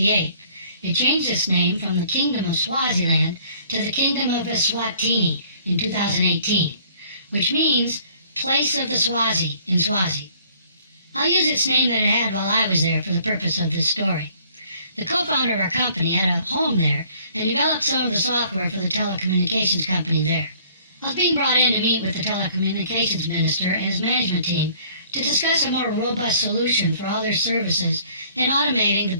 It changed its name from the Kingdom of Swaziland to the Kingdom of Eswatini in 2018, which means place of the Swazi in Swazi. I'll use its name that it had while I was there for the purpose of this story. The co-founder of our company had a home there and developed some of the software for the telecommunications company there. I was being brought in to meet with the telecommunications minister and his management team to discuss a more robust solution for all their services and automating the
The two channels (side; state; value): both; inverted; correlation -0.57